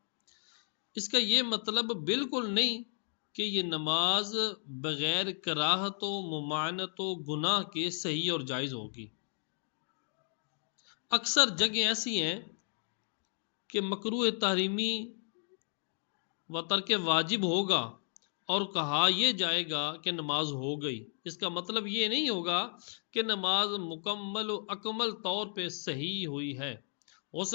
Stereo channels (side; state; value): right; silent; digital silence